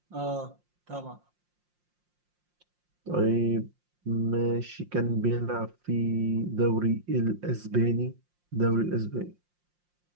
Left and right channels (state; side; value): late; left; 5.6 ms